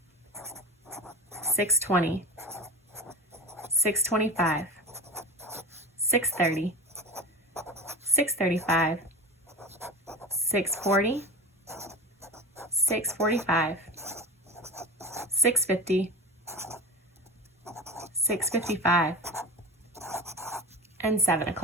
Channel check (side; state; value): both; normal; correlation 0.30